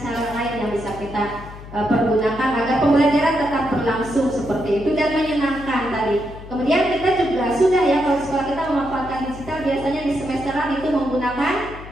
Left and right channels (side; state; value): left; noise; hum, 15 dB below the sound